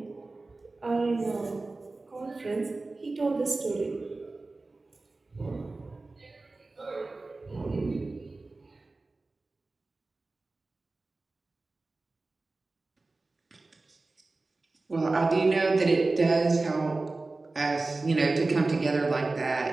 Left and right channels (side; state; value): left; quieter; 3.4 dB